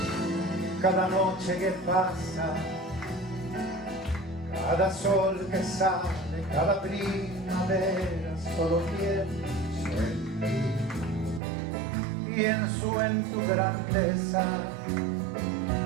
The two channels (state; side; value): drops out; left; at 11.4 s